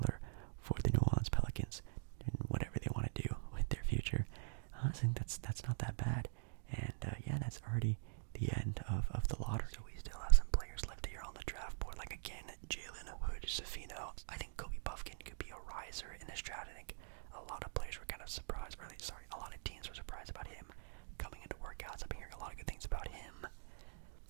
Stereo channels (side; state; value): left; silent; digital silence